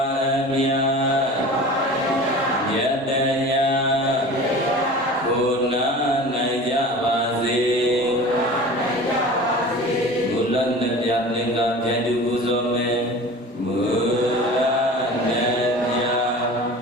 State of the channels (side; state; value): both; normal; correlation 0.38